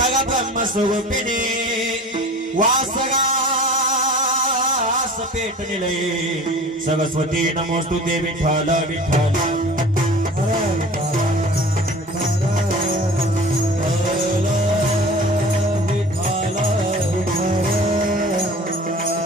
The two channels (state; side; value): normal; both; correlation 0.41